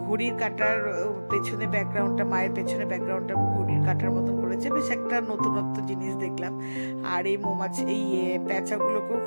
ঘড়ির কাটার পেছনে ব্যাকগ্রাউন্ডটা, মায়ের পেছনে ব্যাকগ্রাউন্ডটা ঘড়ির কাটার মতন করেছে, বেশ একটা নতুনত্ব জিনিস দেখলাম। আর এই মৌমাছি, এই প্যাঁচাগুলোকেও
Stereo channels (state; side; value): inverted; both; correlation -1.00